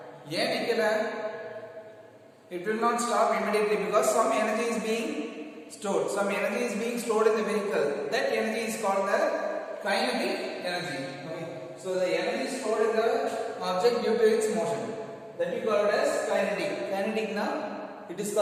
ஏன் நிக்கல? It will not stop immediately because some energy is being stored. Some energy is being stored in the vehicle. That energy is called the kinetic energy. Okay. So the energy stored in the object due to its motion, that we call it as kinetic. Kinetic na, it is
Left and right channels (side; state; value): both; identical; correlation 1.00